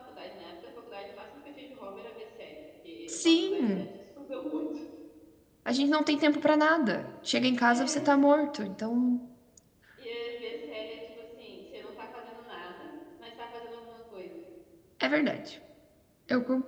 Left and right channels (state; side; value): identical; both; correlation 1.00